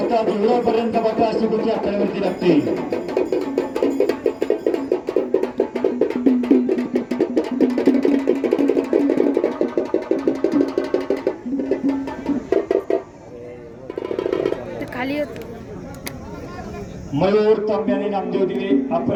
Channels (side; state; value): both; identical; correlation 1.00